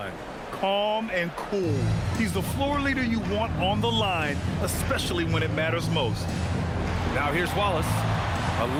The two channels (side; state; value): both; identical; correlation 1.00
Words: Calm and cool. He's the floor leader you want on the line, especially when it matters most. Now here's Wallace,